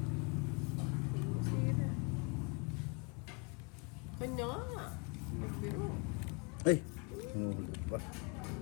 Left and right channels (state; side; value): quieter; right; 32.3 dB